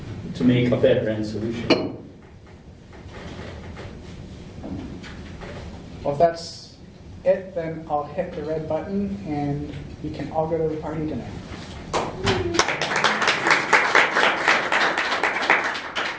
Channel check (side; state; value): both; identical; correlation 1.00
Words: to make a better end solution. Well, if that's it, then I'll hit the red button and we can all go to the party tonight.